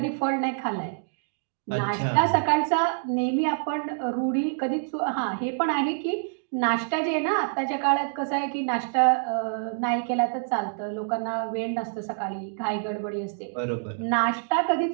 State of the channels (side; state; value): left; silent; digital silence